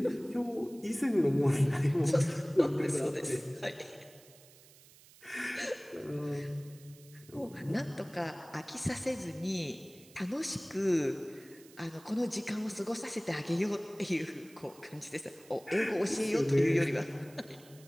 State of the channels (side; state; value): right; noise; hiss, 23 dB below the sound